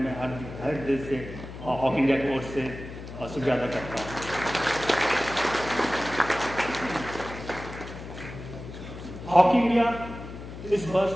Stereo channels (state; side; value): noise; left; hum, 12 dB below the sound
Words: हर दिल से हॉकी इंडिया की ओर से शुक्रिया अदा करता हूँ। हॉकी इंडिया इस